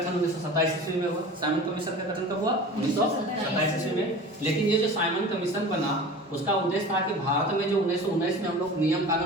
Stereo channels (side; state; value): both; normal; correlation 0.37